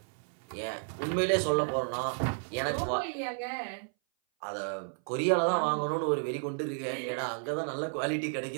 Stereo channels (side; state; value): left; silent; 56 dB below the other